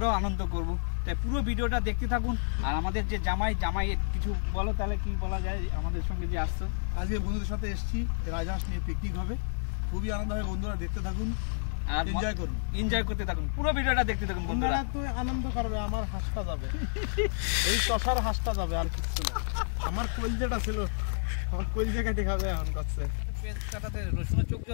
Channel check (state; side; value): silent; right; digital silence